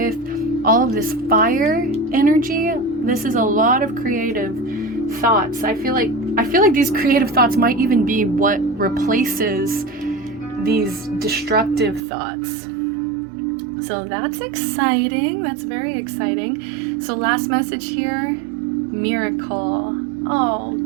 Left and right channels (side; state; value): left; drops out; at 12.0 s